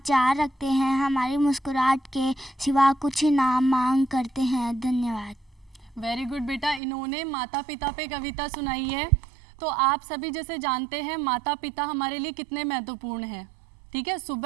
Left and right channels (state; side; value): drops out; left; at 6.8 s